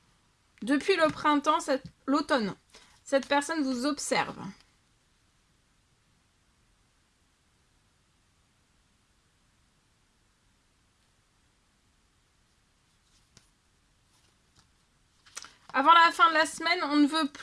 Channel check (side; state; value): both; identical; correlation 1.00